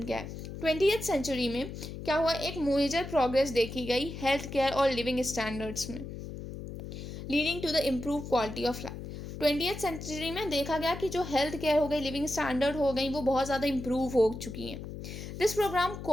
क्या है? 20th सेंचुरी में क्या हुआ, एक मेजर प्रोग्रेस देखी गई हेल्थ केयर और लिविंग स्टैंडर्ड्स में, leading to the improve quality of life. 20th century में देखा गया कि जो हेल्थ केयर हो गई, लिविंग स्टैंडर्ड हो गई, वो बहुत ज़्यादा इम्प्रूव हो चुकी हैं। This programme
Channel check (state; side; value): noise; left; hum, 9 dB below the sound